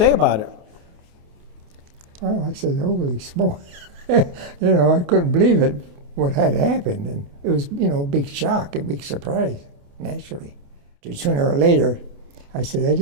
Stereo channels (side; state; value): left; late; 28 ms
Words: about it? Well, I said, holy smoke. I couldn't believe it, what had happened. And it was, a big shock, a big surprise, naturally. Sooner or later, I said, I